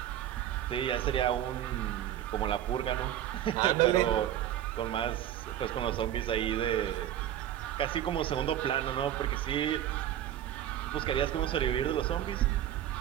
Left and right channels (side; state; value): left; quieter; 11.6 dB